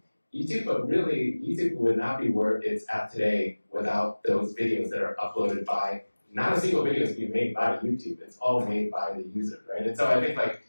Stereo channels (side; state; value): both; inverted; correlation -1.00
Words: YouTube, but really, YouTube would not be where it's at today without those videos that are uploaded by, not a single video is being made by YouTube, it's all made by the user, right? And so I think like